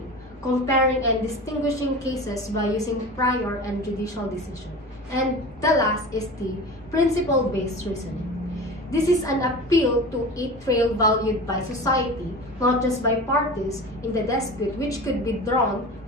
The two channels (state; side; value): normal; both; correlation 0.33